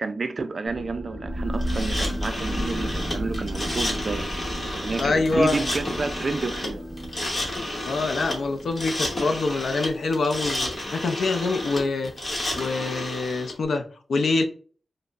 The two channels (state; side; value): normal; both; correlation 0.90